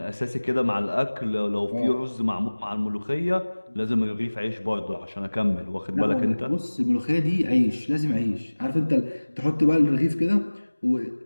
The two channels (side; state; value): both; inverted; correlation -1.00